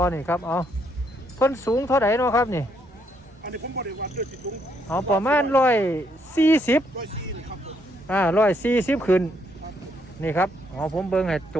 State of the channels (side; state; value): both; normal; correlation 0.73